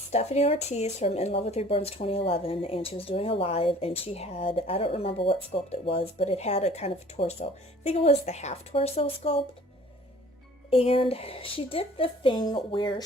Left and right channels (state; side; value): normal; both; correlation 0.51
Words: Ortiz from In Love with Reborn's 2011, and she was doing a live, and she had, I don't remember what sculpt it was, but it had a kind of torso. I think it was the half torso sculpt. And she did the thing where